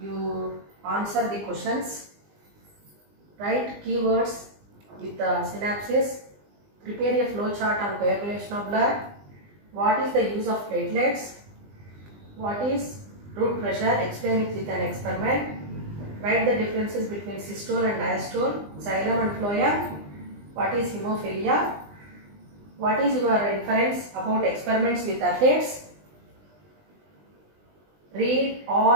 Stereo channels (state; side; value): late; left; 20 ms